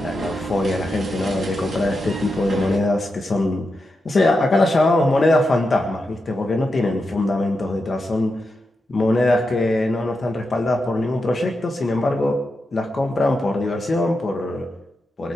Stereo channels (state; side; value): normal; both; correlation 0.87